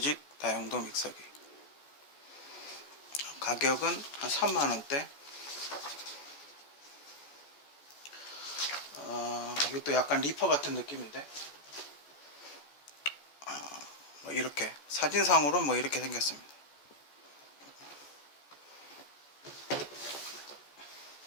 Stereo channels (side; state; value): right; late; 14 ms